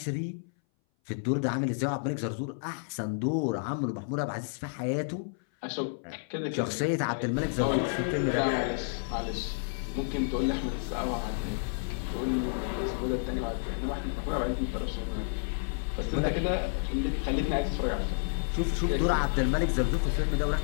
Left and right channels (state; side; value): silent; right; 57 dB below the other